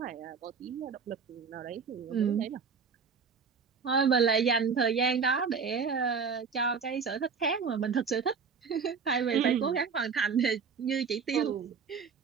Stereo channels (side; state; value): left; quieter; 5.7 dB